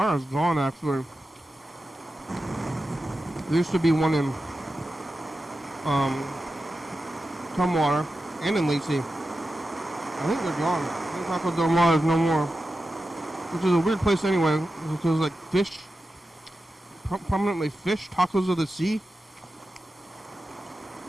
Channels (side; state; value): both; normal; correlation 0.92